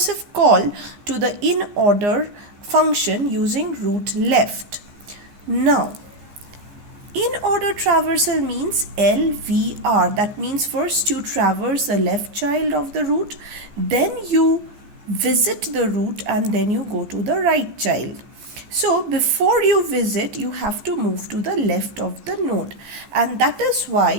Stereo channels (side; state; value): left; late; 15 ms